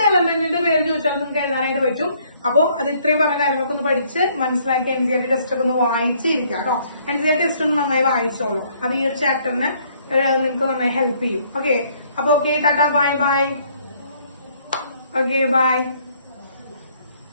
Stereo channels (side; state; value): both; inverted; correlation -0.64